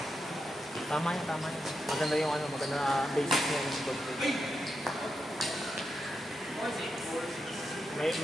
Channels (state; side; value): normal; both; correlation 0.86